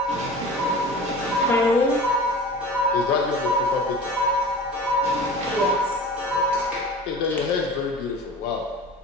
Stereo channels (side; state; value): both; normal; correlation 0.38